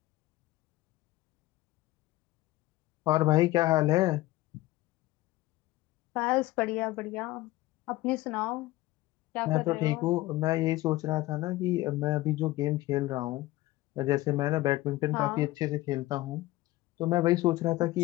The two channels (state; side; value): quieter; right; 17.8 dB